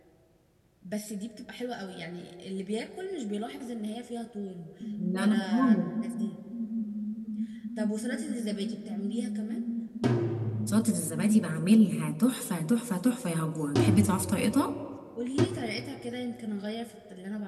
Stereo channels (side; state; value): both; identical; correlation 1.00